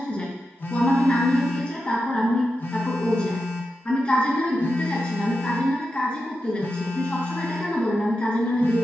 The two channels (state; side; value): normal; both; correlation 0.89